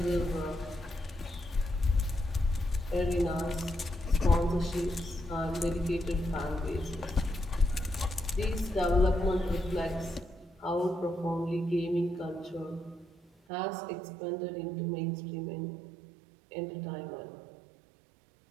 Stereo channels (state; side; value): drops out; left; at 13.3 s